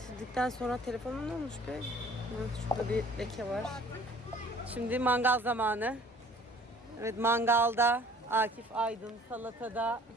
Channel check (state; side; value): normal; both; correlation 0.52